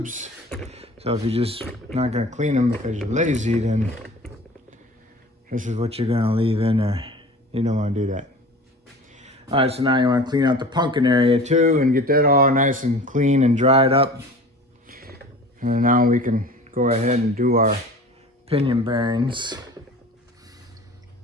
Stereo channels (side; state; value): both; normal; correlation 0.41